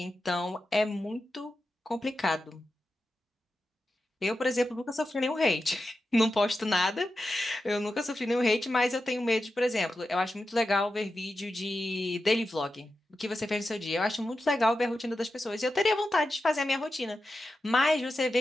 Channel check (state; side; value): normal; both; correlation 0.91